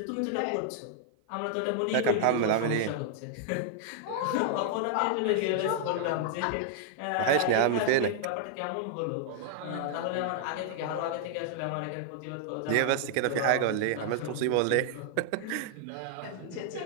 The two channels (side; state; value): both; different; correlation -0.01